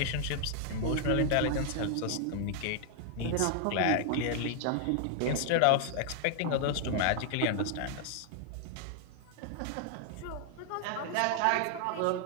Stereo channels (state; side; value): different; both; correlation 0.00